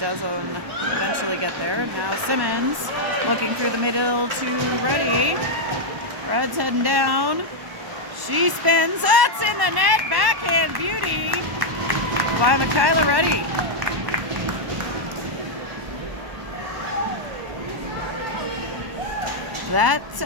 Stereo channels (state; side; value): late; left; 1.1 ms